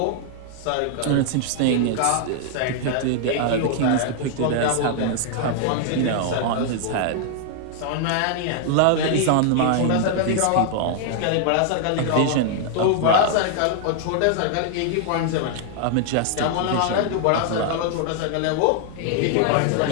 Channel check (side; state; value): both; different; correlation 0.00